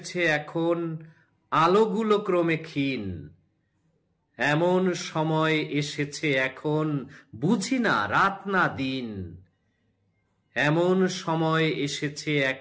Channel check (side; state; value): both; identical; correlation 1.00